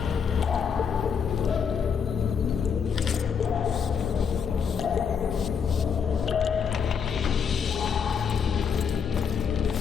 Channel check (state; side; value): quieter; right; 6.7 dB